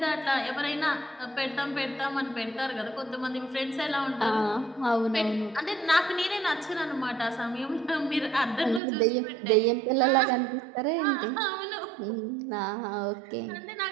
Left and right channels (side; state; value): left; drops out; at 8.8 s